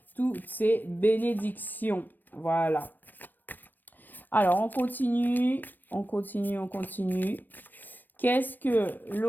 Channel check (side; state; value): right; late; 0.091 ms